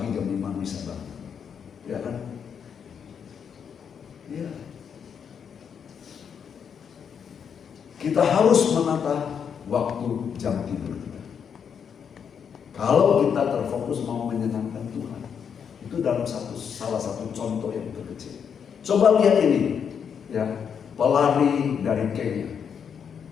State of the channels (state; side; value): quieter; right; 7.3 dB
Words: jam 5 bisa bangun. Ya kan? Ya. Kita harus menata waktu jam tidur kita. Kalau kita terfokus mau menyenangkan Tuhan, itu dalam salah satu contoh yang terkecil. Coba lihat ini, ya, pelari dari Kenya